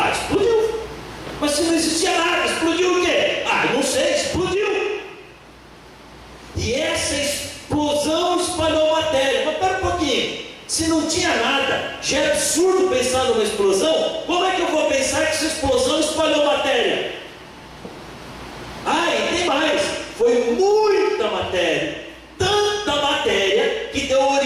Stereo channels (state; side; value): identical; both; correlation 1.00